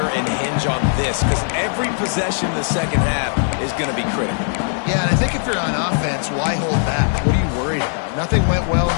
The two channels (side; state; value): right; silent; 66 dB below the other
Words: and hinge on this? Because every possession in the second half is going to be critical. Yeah, and I think if you're on offense, why hold back? What are you worried about? Nothing went well in